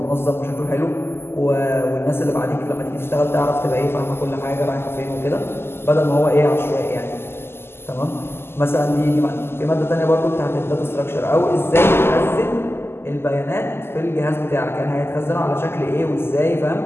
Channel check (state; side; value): late; right; 0.12 ms